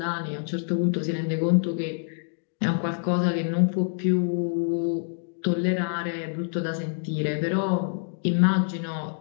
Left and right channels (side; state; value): right; silent; digital silence